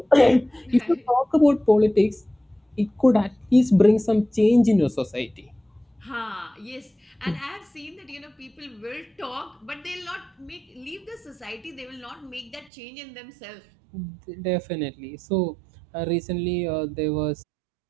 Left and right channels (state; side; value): drops out; left; at 12.7 s